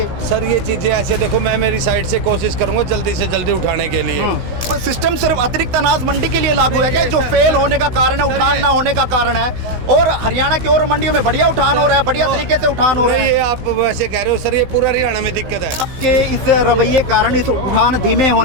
सर ये चीजें ऐसे देखो, मैं मेरी साइड से कोशिश करूंगा जल्दी से जल्दी उठाने के लिए। सिस्टम सिर्फ अतिरिक्त अनाज मंडी के लिए लागू है क्या? जो फेल होने का कारण है, उठान ना होने का कारण है, और हरियाणा की और मंडियों में बढ़िया उठान हो रहा है, बढ़िया तरीके से उठान हो रहा है। ये आप वैसे कह रहे हो सर, ये पूरा हरियाणा में दिक्कत है कि इस रवैये कारण, इस उठान धीमे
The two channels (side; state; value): left; late; 16 ms